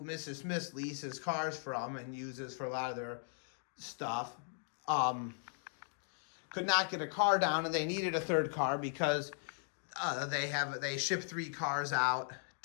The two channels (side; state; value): right; silent; 53 dB below the other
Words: Mrs. Smith leases cars from and uses for a lot of their stuff, could not get a car down, and they needed a third car because they ship 3 cars out